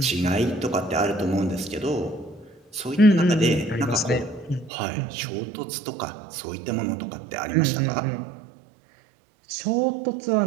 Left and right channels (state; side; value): drops out; left; at 4.7 s